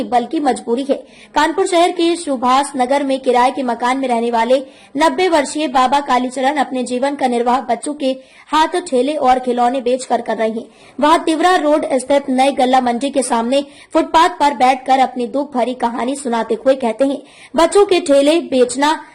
बल्कि मजबूरी है। कानपुर शहर के सुभाष नगर में किराए के मकान में रहने वाले 90 वर्षीय बाबा कालीचरण अपने जीवन का निर्वाह बच्चों के हाथ ठेले और खिलौने बेचकर कर रहे हैं। वह तिवरा रोड स्थित नई गल्ला मंडी के सामने फुटपाथ पर बैठकर अपनी दुख भरी कहानी सुनाते हुए कहते हैं, बच्चों के ठेले बेचना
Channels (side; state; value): both; identical; correlation 1.00